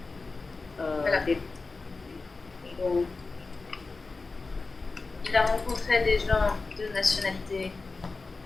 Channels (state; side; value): quieter; right; 3.9 dB